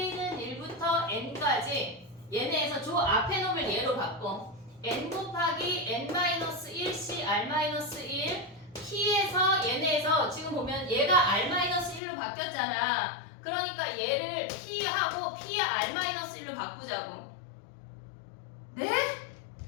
1부터 N까지 얘네에서 저 앞에 놈을 얘로 바꿔. N 곱하기 N-1C R-1 P에서 얘네에서 지금 보면 얘가 R-1로 바뀌었잖아. 그러니까 얘를 P하고 P의 R-1로 바꾸자고. 네?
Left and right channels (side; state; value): right; drops out; at 12.0 s